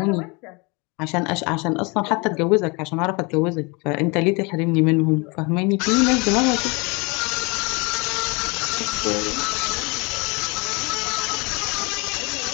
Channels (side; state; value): right; quieter; 28.7 dB